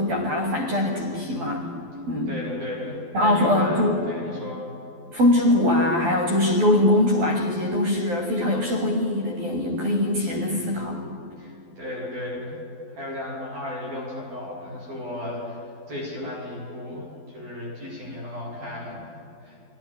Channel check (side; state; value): left; late; 12 ms